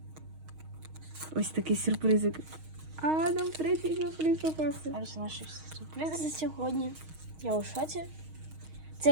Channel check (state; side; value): late; left; 6.4 ms